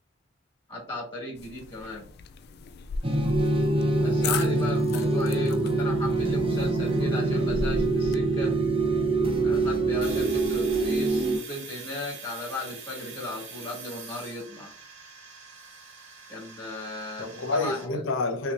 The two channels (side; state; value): both; normal; correlation 0.62